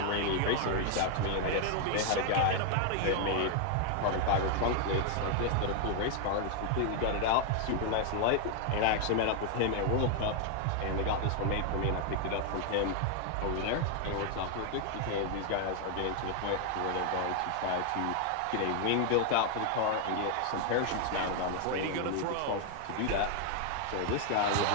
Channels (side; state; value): both; different; correlation 0.00